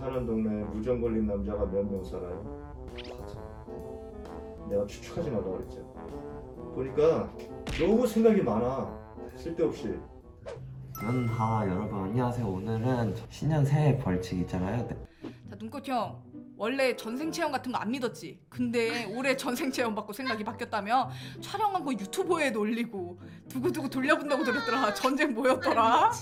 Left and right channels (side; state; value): both; identical; correlation 1.00